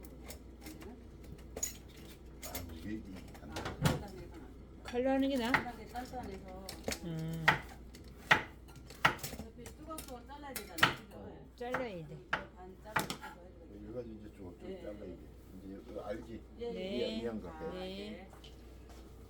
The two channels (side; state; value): both; identical; correlation 1.00